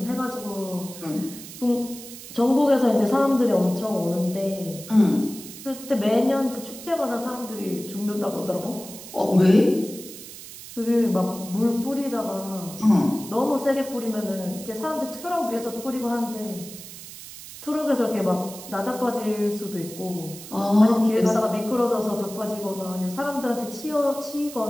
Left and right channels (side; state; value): right; noise; hiss, 14 dB below the sound